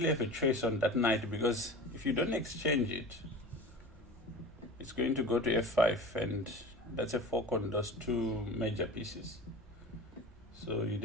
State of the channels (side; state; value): both; normal; correlation 0.34